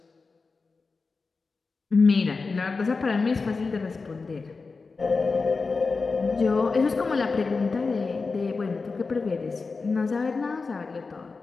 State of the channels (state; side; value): quieter; right; 4.3 dB